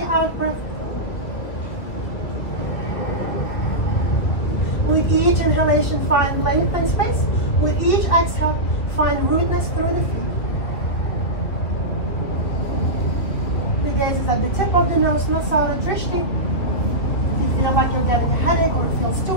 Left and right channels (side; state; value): right; late; 2.5 ms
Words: out breath. With each inhalation, find length and space. With each exhale, find rootness through the feet. The gaze is at the tip of the nose, Nasara Drishti. If you feel like you're getting a headache or it feels too